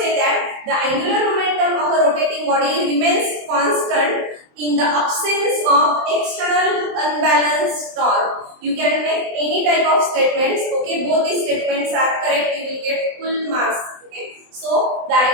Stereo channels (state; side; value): late; left; 23 ms